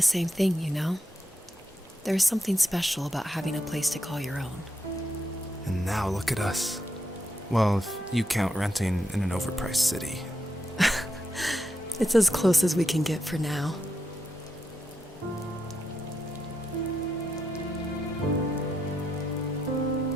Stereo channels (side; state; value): both; normal; correlation 0.83